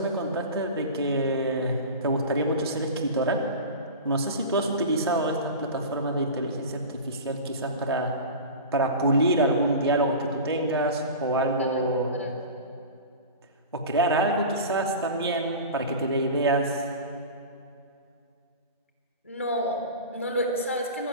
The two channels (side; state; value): both; inverted; correlation -0.31